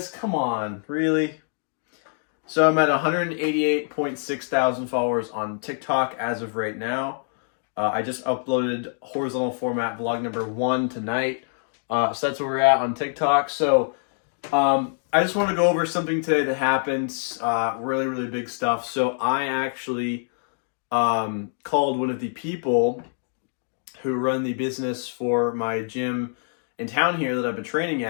come on, really? So I'm at 188.6 thousand followers on TikTok as of right now. I just uploaded horizontal format vlog number 1 tonight. So that's where we're at on TikTok. So I just want to go over something today that happened. Really, really big stuff. So I actually called one of the people who run the business for my gym in town here that I've been training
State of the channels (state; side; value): silent; right; 62 dB below the other